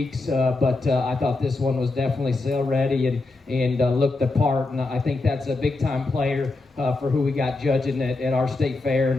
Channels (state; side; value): quieter; right; 3.3 dB